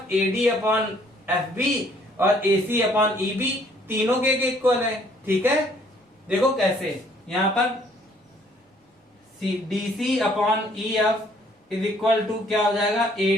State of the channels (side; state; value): both; normal; correlation 0.62